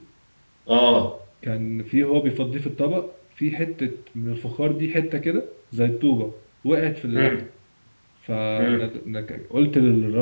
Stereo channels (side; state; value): both; inverted; correlation -1.00